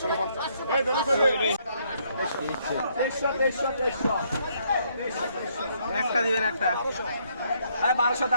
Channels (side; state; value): both; inverted; correlation -0.71